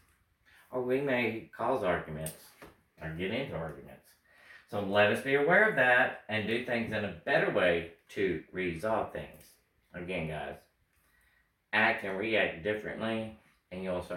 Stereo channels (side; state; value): both; identical; correlation 1.00